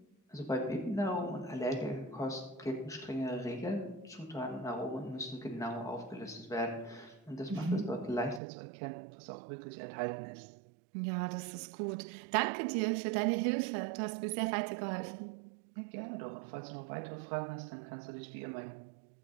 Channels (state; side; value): drops out; left; at 8.4 s